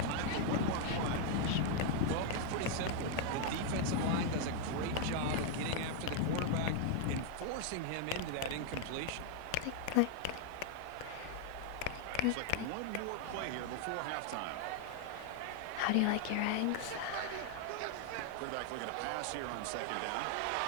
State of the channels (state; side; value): different; both; correlation 0.00